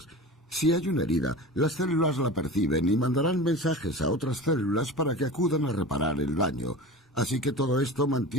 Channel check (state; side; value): normal; both; correlation 0.34